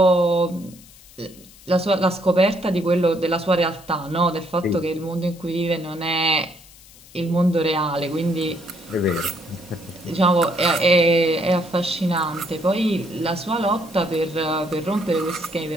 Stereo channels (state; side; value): noise; left; hiss, 23 dB below the sound